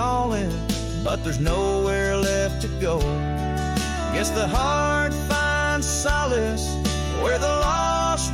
but there's nowhere left to go. Guess the heart finds solace where the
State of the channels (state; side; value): identical; both; correlation 1.00